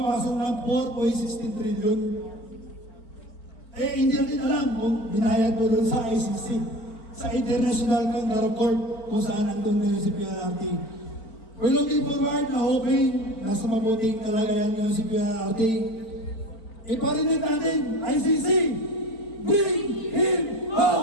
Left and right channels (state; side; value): late; right; 4.4 ms